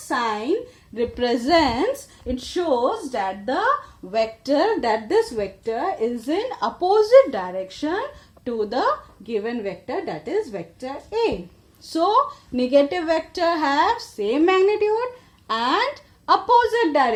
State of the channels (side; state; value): both; identical; correlation 1.00